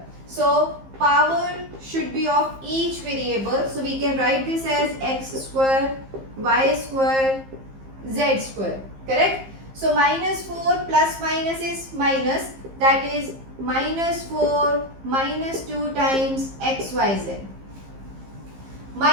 So power should be of each variable. So we can write this as x square, y square, z square. Correct? So minus 4 plus minus is minus. That is minus 4 minus 2 times xyz.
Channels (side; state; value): left; late; 15 ms